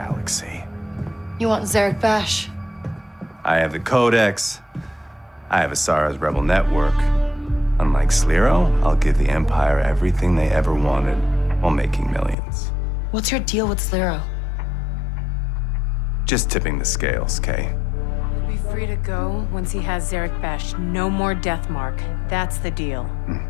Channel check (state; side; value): drops out; right; at 12.4 s